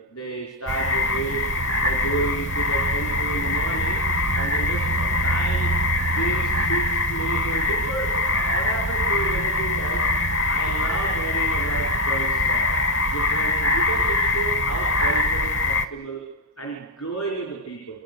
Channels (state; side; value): normal; both; correlation 0.06